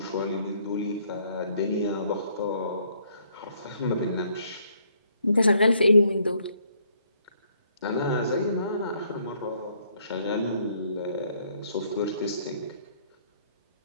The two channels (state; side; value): inverted; both; correlation -0.67